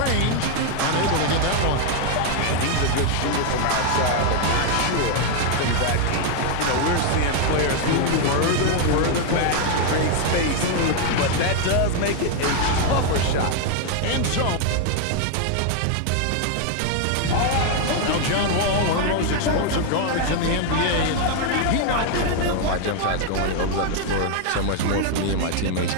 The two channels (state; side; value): different; both; correlation 0.00